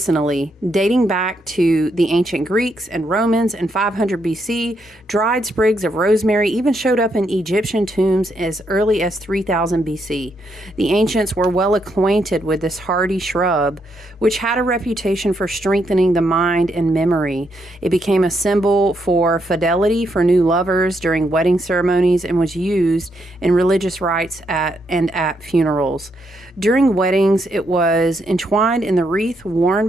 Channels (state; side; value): normal; both; correlation 0.78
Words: dating back to the ancient Greeks and Romans in 500 BC. Dried sprigs of rosemary even showed up in Egyptian tombs as early as 3000 BC. The ancients were well acquainted with this hardy shrub, which had a reputation for strengthening the mind and memory. It became a symbol for fidelity for new lovers during wedding ceremonies and was used in religious rites at funerals. During weddings, it was entwined in the wreath worn